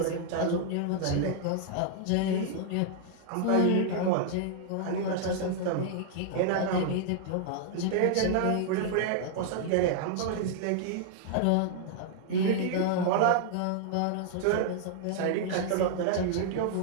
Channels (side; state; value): both; different; correlation -0.01